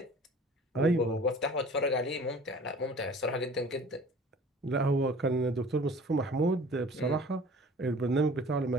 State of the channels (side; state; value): both; normal; correlation 0.47